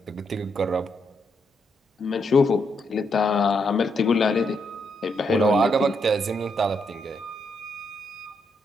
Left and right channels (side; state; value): both; normal; correlation 0.79